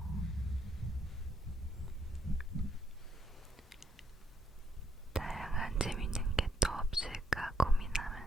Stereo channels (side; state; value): both; normal; correlation 0.76